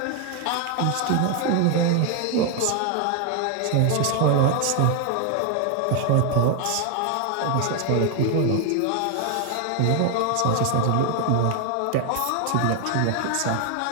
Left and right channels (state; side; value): different; both; correlation 0.00